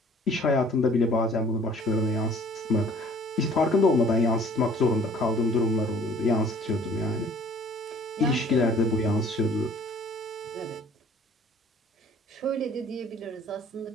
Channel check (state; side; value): normal; both; correlation 0.54